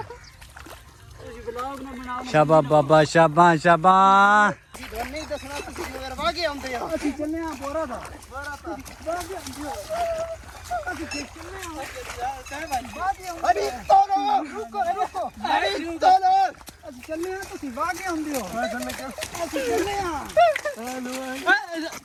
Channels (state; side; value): identical; both; correlation 1.00